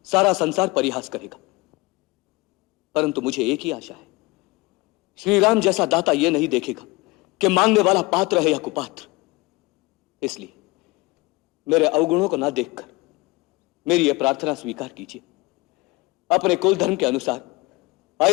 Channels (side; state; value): right; quieter; 23.2 dB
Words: सारा संसार परिहास करेगा, परंतु मुझे एक ही आशा है, श्री राम जैसा दाता यह नहीं देखेगा कि मांगने वाला पात्र है या कुपात्र। इसलिए मेरे अवगुणों को ना देखकर मेरी यह प्रार्थना स्वीकार कीजिए। अपने कुल धर्म के अनुसार